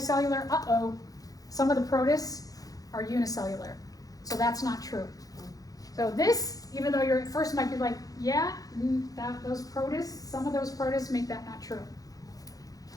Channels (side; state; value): right; late; 0.17 ms